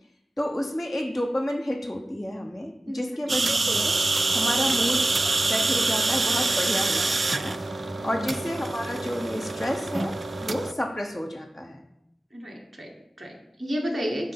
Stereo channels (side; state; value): both; normal; correlation 0.96